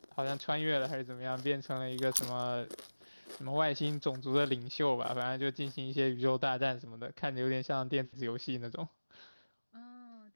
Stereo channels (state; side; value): inverted; both; correlation -1.00